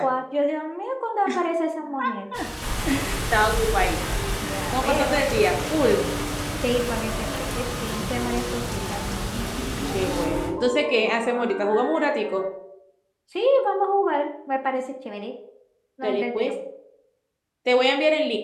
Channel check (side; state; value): both; identical; correlation 1.00